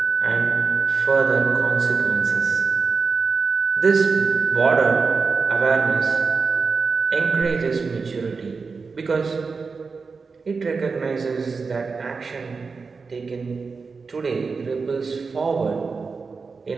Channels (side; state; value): left; quieter; 4.7 dB